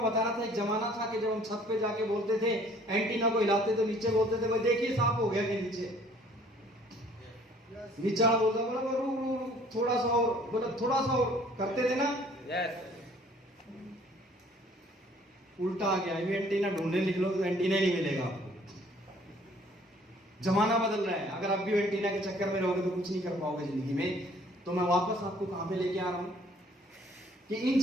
बता रहा था, एक जमाना था कि जब हम छत पे जाके बोलते थे, एंटीना को हिलाते तो नीचे बोलते थे भाई देखिए साफ हो गया कि नीचे, नीचा बोलता बोला थोड़ा सा और, बोला थोड़ा सा और करते थे ना, उल्टा आ गया। अभी एंटीना ढूंढने निकलो तो एंटीना नहीं मिलेगा आपको। जमाना बदल रहा है, अगर आप भी एंटीना के चक्कर में रहोगे तो कुछ नहीं कर पाओगे जिंदगी में। तो मैं वापस आपको कहां पे लेके आ रहा हूं कि इन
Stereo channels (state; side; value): normal; both; correlation 0.57